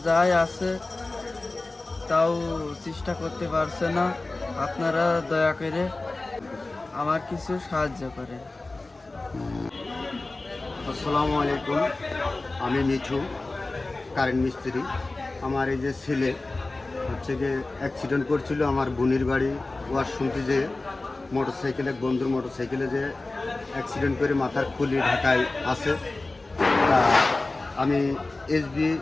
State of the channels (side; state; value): right; quieter; 3.2 dB